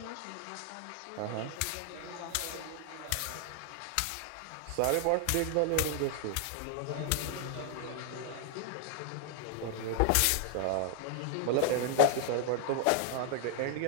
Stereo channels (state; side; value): different; both; correlation 0.00